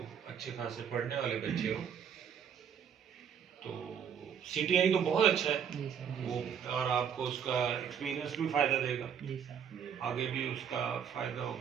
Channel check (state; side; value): quieter; left; 8.0 dB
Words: اچھے خاصے پڑھنے والے بچے ہو. تو سی ٹی آئی تو بہت اچھا ہے وہ، اور آپ کو اس کا ایکسپیرینس بھی فائدہ دے گا، آگے بھی اس کا فائدہ